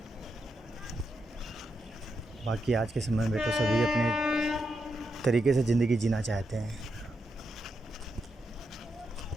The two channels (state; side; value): normal; both; correlation 0.84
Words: बाकी आज के समय में तो सभी अपने तरीके से ज़िंदगी जीना चाहते हैं।